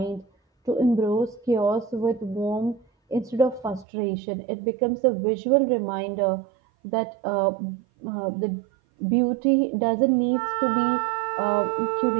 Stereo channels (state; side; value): drops out; left; at 3.9 s